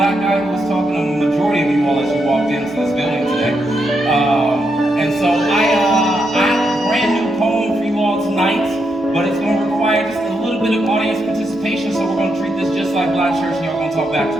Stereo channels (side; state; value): both; normal; correlation 0.81